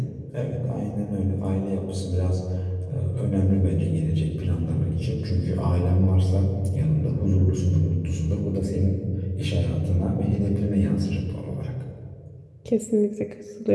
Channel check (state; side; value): identical; both; correlation 1.00